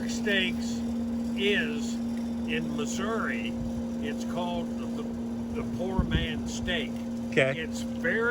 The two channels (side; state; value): both; identical; correlation 1.00